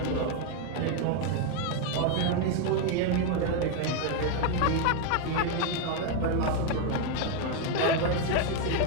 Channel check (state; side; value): different; both; correlation 0.01